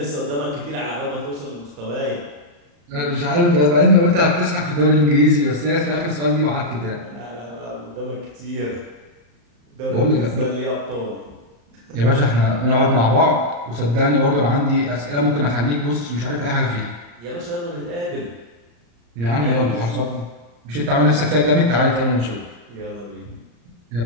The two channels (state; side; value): late; left; 35 ms